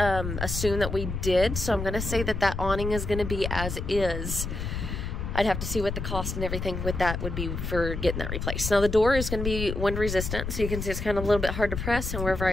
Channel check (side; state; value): left; noise; rumble, 4 dB below the sound